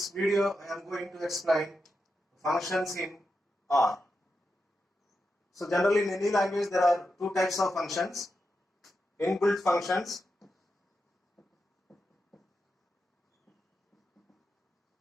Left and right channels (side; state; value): both; normal; correlation 0.87